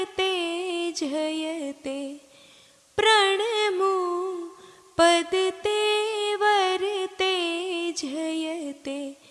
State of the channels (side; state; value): both; identical; correlation 1.00